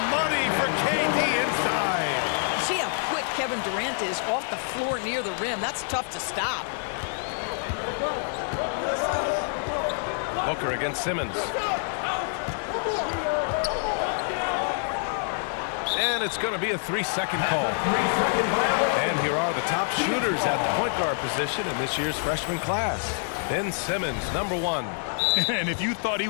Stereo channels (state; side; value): silent; right; digital silence